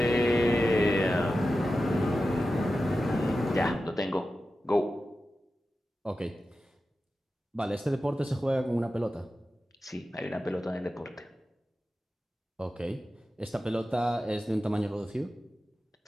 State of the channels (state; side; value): normal; both; correlation 0.93